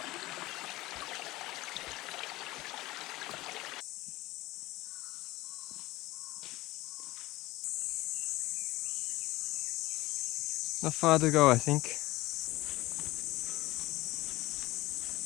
Not far to go, I think.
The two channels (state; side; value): quieter; right; 18.6 dB